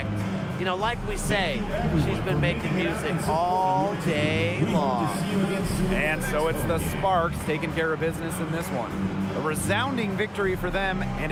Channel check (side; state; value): both; identical; correlation 1.00